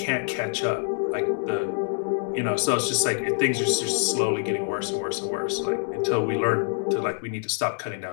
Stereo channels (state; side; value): silent; right; 60 dB below the other